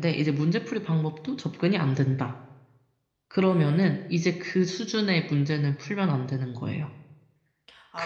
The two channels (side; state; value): both; identical; correlation 1.00